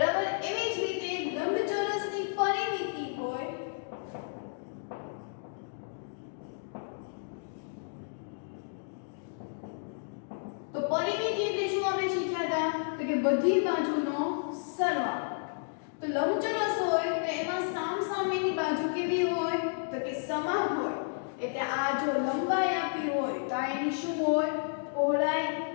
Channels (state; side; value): silent; right; digital silence